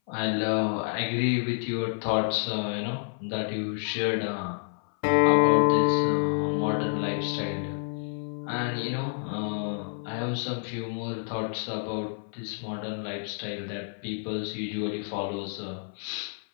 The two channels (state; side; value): silent; right; 59 dB below the other